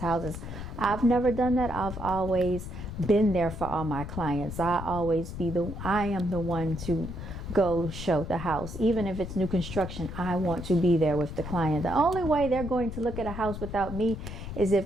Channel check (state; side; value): noise; left; rumble, 8 dB below the sound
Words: houses. I've never done that. I've always been there for all my clients. I am the one to go show the house. Even if it's new construction, I want to be there with the client. The only way they're going to look at a house without me is